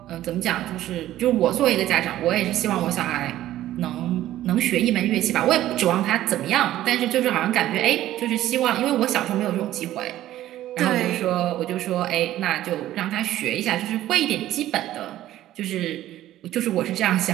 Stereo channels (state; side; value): quieter; left; 13.8 dB